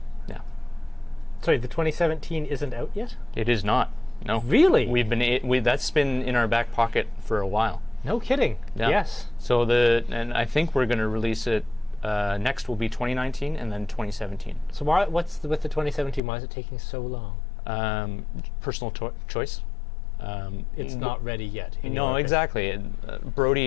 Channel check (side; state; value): right; drops out; at 16.2 s